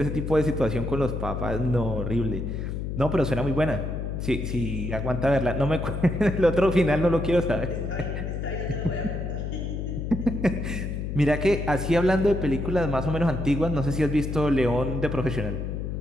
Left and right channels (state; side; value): noise; left; hum, 4 dB below the sound